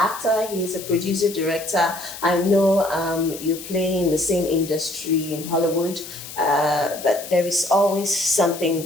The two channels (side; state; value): left; noise; hiss, 12 dB below the sound